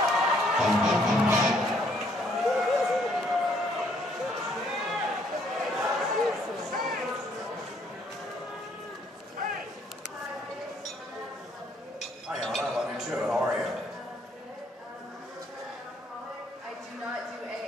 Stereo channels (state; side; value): normal; both; correlation 0.66